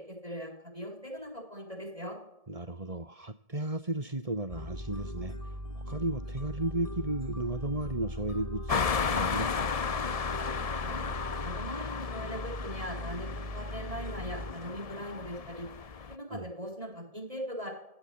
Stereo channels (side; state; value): left; late; 1.7 ms